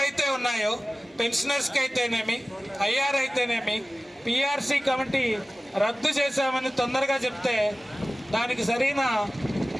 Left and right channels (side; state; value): both; normal; correlation 0.97